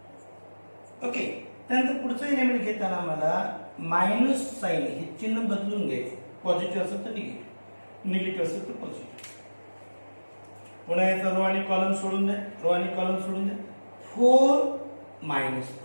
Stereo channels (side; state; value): both; inverted; correlation -1.00